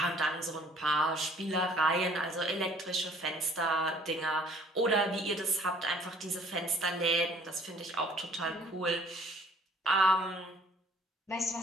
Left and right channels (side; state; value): both; normal; correlation 0.56